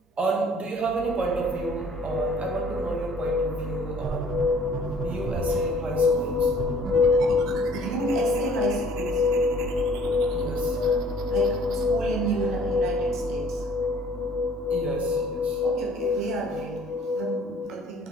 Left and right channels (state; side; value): normal; both; correlation 0.55